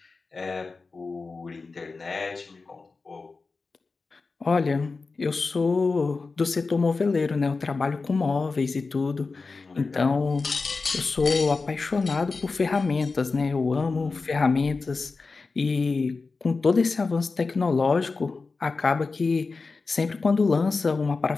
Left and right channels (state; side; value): quieter; right; 4.1 dB